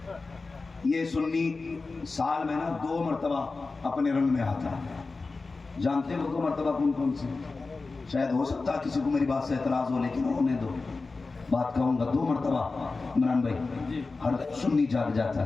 یہ سنی سال میں نا 2 مرتبہ اپنے رنگ میں آتا ہے۔ جانتے ہو 2 مرتبہ کون کون سے؟ شاید ہو سکتا ہے کسی کو میری بات سے اعتراض ہو، لیکن ہونے دو، بات کہوں گا 2 مرتبہ عمران بھائی ہر سنی جاگ جاتا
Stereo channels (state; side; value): quieter; right; 3.9 dB